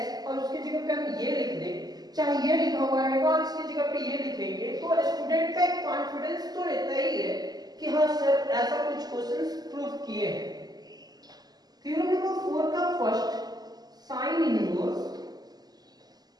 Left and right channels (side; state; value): left; late; 0.19 ms